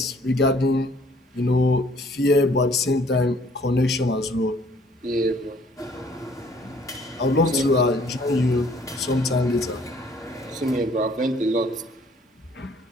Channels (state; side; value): normal; both; correlation 0.59